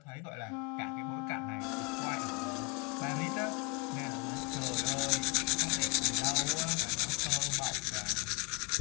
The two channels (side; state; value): right; quieter; 28.9 dB